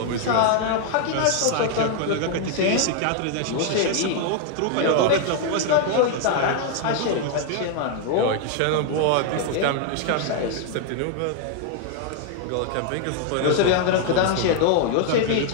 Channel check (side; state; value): both; different; correlation 0.00